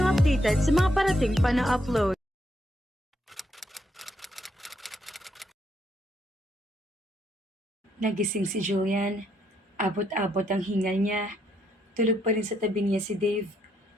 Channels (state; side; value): normal; both; correlation 0.75